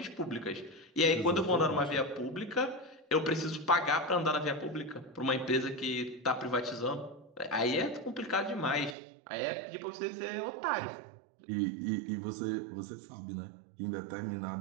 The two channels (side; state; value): left; drops out; at 9.0 s